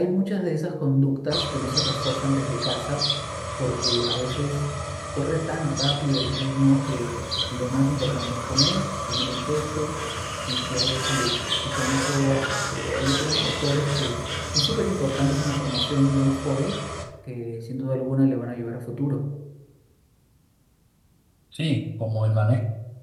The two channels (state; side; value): identical; both; correlation 1.00